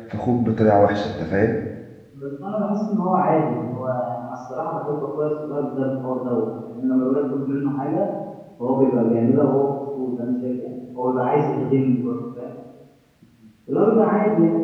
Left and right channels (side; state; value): both; identical; correlation 1.00